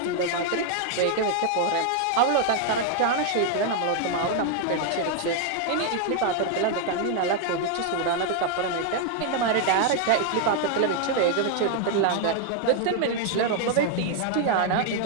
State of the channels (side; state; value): both; different; correlation 0.00